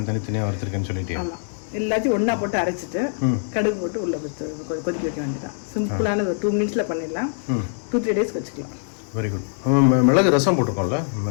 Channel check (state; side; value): silent; right; 63 dB below the other